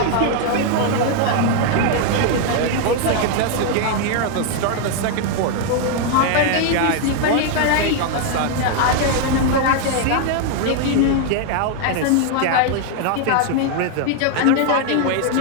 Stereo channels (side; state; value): both; different; correlation 0.00